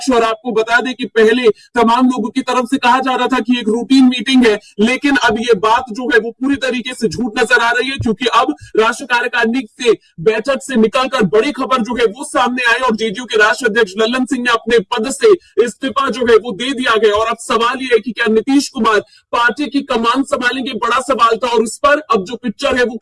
और आपको बता दें कि पहले तमाम लोगों की तरफ से कहा जा रहा था कि एक रूटीन मीटिंग है, लेकिन अब ये बात जो है वो पूरी तरीके से झूठ नजर आ रही है, क्योंकि अब राष्ट्रीय कार्यकारिणी से बैठक से निकलकर बड़ी खबर जो है वो सामने आई और जेडीयू के राष्ट्रीय अध्यक्ष ललन सिंह ने अपने पद से इस्तीफा जो है वो दे दिया गया। और अब सवाल ये है कि क्या नीतीश कुमार पार्टी की कमान संभालेंगे, बड़ा सवाल था। और उस पर अब जो पिक्चर है वो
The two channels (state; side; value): identical; both; correlation 1.00